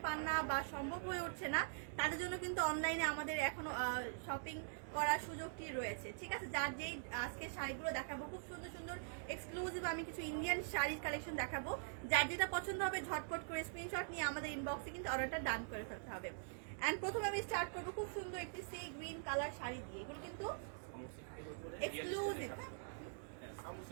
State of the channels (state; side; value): silent; left; digital silence